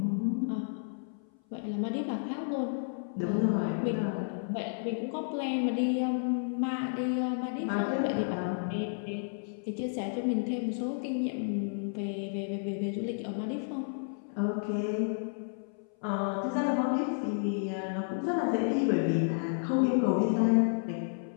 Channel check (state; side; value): silent; right; 57 dB below the other